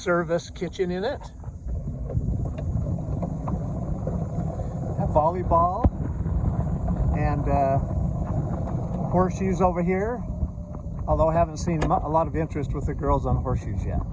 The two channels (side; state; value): both; identical; correlation 1.00